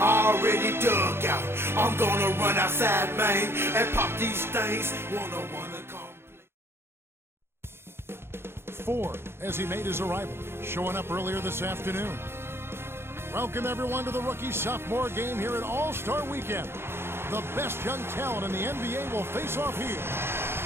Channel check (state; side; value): late; left; 0.12 ms